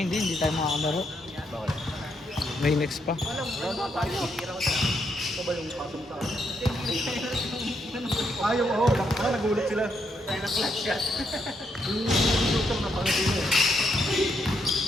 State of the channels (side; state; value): both; normal; correlation 0.77